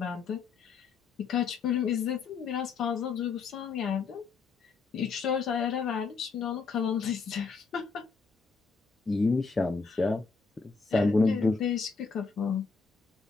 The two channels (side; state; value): right; quieter; 4.9 dB